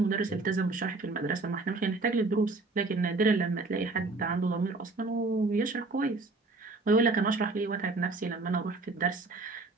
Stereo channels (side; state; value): left; quieter; 3.4 dB